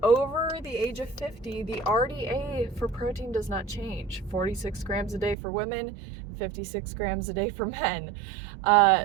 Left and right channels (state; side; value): drops out; left; at 5.4 s